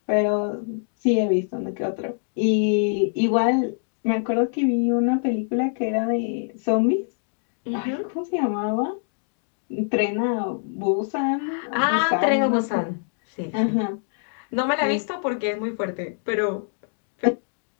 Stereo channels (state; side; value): silent; right; digital silence